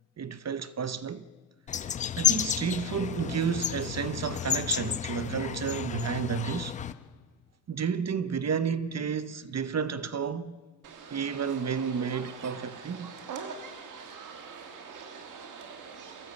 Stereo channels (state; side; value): normal; both; correlation 0.13